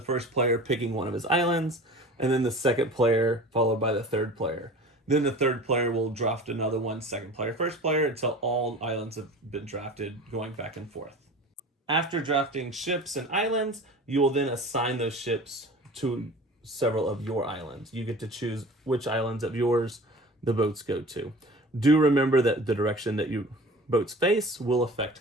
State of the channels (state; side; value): normal; both; correlation 0.39